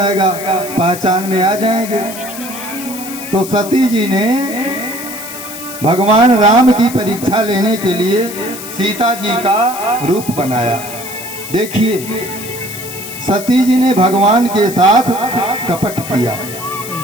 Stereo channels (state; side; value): noise; left; hiss, 11 dB below the sound